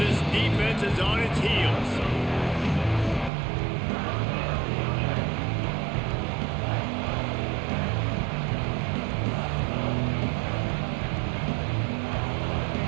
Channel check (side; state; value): left; drops out; at 3.3 s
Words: defense is on its heels.